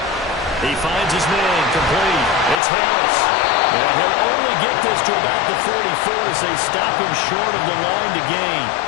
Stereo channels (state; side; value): drops out; right; at 2.6 s